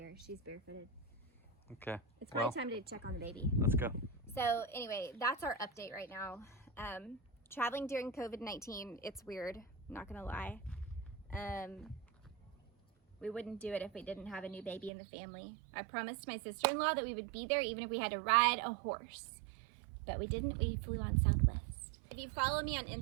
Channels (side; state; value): left; drops out; at 14.9 s